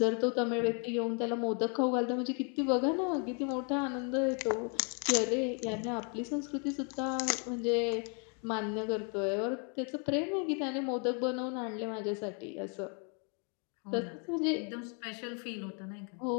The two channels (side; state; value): right; quieter; 38.2 dB